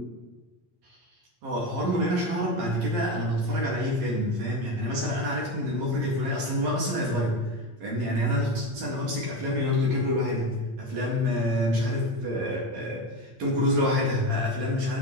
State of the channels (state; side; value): late; left; 8.5 ms